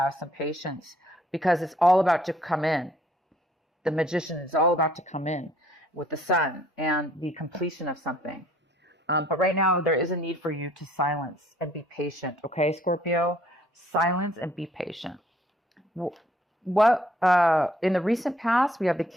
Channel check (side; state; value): both; normal; correlation 0.61